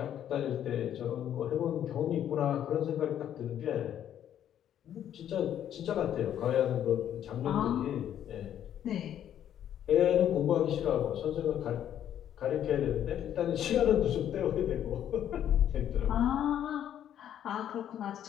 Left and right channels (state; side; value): quieter; right; 10.4 dB